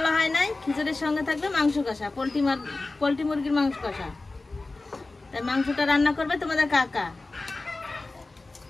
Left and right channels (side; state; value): right; quieter; 3.3 dB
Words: হয় নাই, খিচুড়ির সঙ্গে থাকবে মাংস কষা, পোলট্রি মুরগির মাংস কষা। তাই মাংসটা রান্না করবে তোমাদের কাকা।